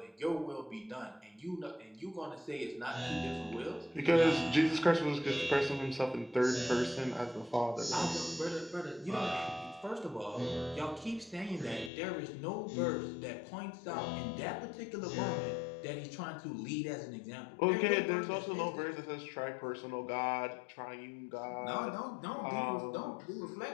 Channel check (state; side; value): drops out; right; at 11.9 s